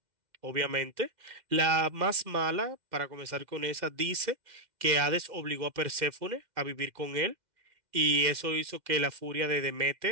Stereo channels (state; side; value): late; left; 2.1 ms